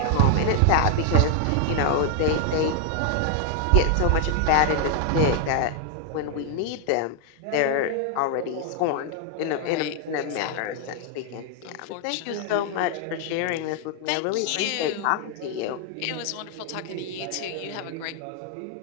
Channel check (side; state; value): both; different; correlation 0.00